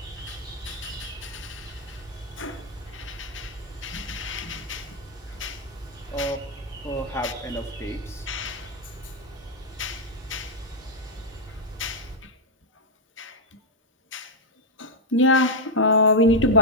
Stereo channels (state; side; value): normal; both; correlation 0.00